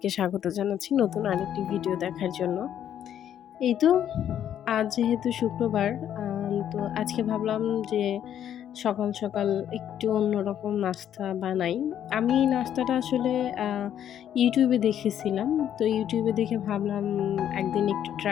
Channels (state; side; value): quieter; right; 10.1 dB